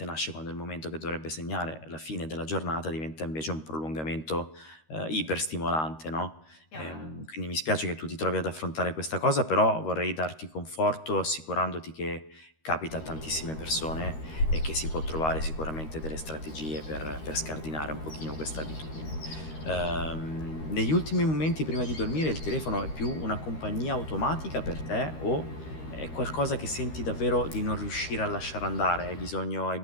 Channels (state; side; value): late; right; 13 ms